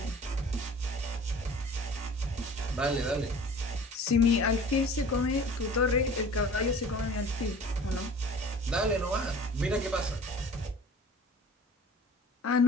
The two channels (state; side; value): normal; both; correlation 0.44